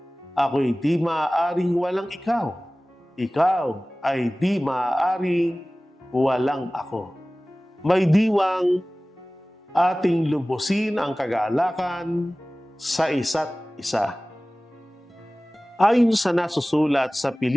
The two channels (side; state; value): both; normal; correlation 0.98